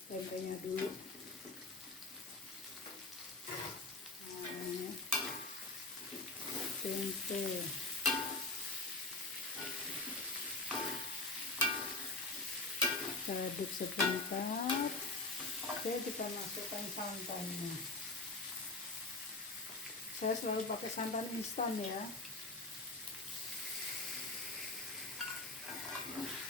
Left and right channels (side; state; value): right; quieter; 3.1 dB